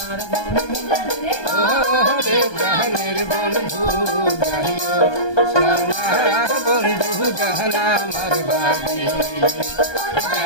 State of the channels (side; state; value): right; late; 1.2 ms